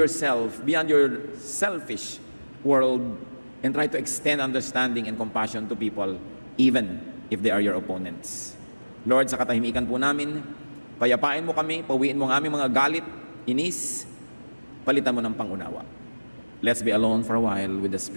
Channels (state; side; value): inverted; both; correlation -1.00